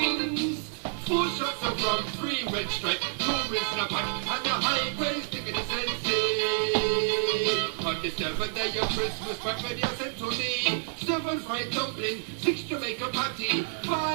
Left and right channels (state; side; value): silent; left; 58 dB below the other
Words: 4 shots of rum, 3 red stripe, 2 Rizla pack, and a high grade stick in the sensei. On the seventh day of Christmas, my radio sent to me 7 fried dumpling, 6 Jamaica patty,